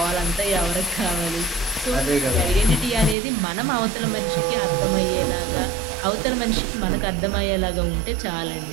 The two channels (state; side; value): drops out; left; at 3.2 s